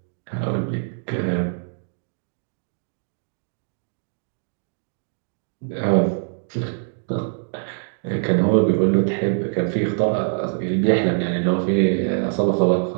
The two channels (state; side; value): silent; left; digital silence